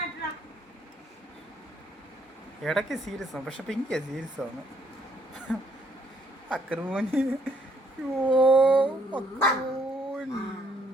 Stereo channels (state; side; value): normal; both; correlation 0.68